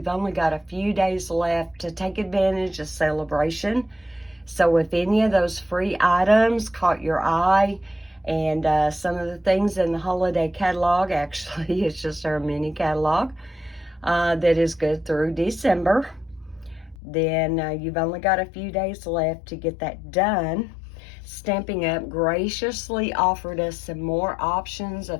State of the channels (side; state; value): right; drops out; at 16.9 s